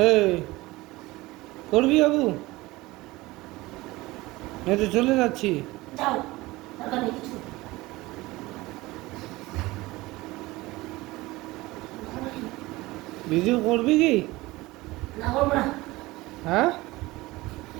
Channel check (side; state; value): left; quieter; 20.1 dB